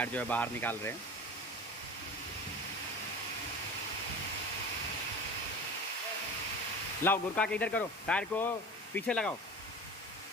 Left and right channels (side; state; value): both; normal; correlation 0.34